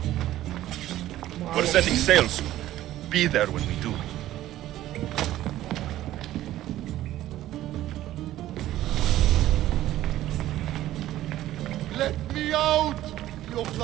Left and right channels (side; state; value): left; quieter; 14.1 dB